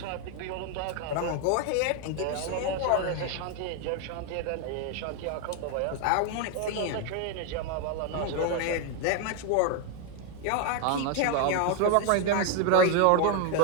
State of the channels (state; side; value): different; both; correlation 0.01